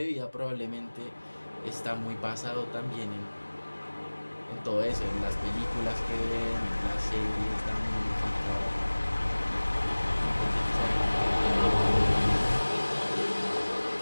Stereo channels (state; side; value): inverted; both; correlation -1.00